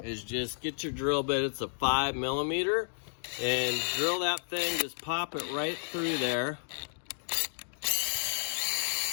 is just get your drill bit. It's a 5mm, and drill that thing. Just pop it right through there.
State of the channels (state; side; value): silent; right; digital silence